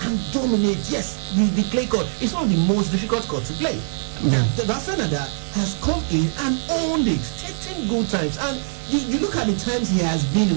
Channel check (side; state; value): left; silent; 61 dB below the other